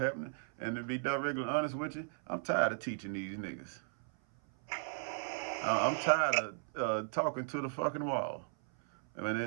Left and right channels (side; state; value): left; silent; 54 dB below the other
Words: And to be directly honest with you, I'm tired of teaching these niggas. I'm tired of talking to the fucking wall. I mean, they